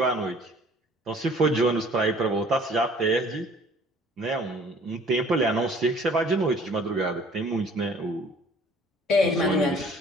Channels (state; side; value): normal; both; correlation 0.53